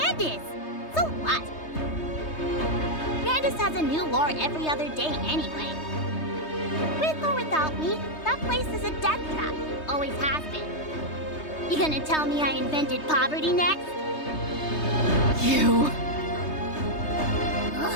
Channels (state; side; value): late; right; 3.2 ms